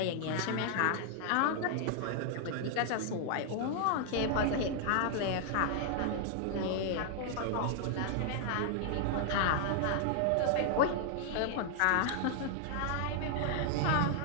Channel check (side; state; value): both; different; correlation 0.00